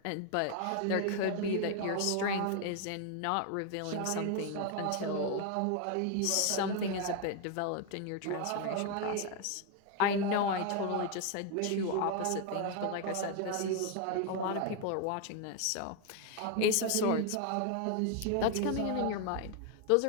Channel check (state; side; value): different; both; correlation 0.01